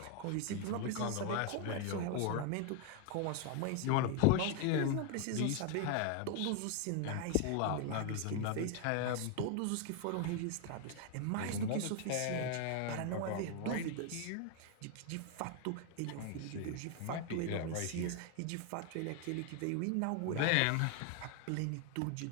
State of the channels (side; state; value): both; different; correlation 0.00